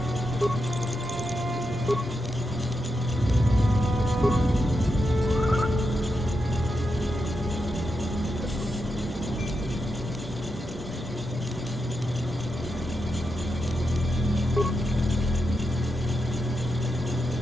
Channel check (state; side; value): normal; both; correlation 0.86